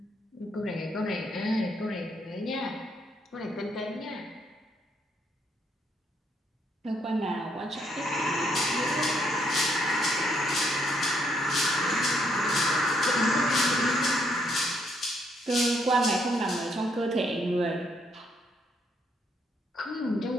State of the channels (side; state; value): both; normal; correlation 0.72